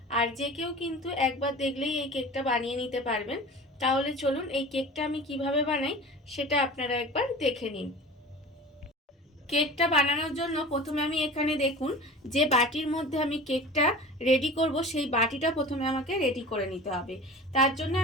আর যে কেউ কিন্তু একবার দেখলেই এই কেকটা বানিয়ে নিতে পারবেন। তাহলে চলুন এই কেকটা আমি কিভাবে বানাই সেটা আপনারা একবার দেখে নিন। কেকটা বানানোর জন্য প্রথমে আমি এখানে দেখুন যে বাটির মধ্যে আমি কেকটা রেডি করব, সেই বাটিটা প্রথমে আমাকে রেডি করে নিতে হবে। তার জন্য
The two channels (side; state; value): both; normal; correlation 0.37